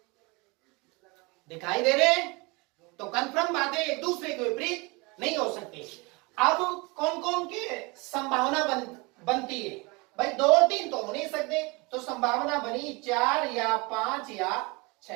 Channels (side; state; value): left; quieter; 26.6 dB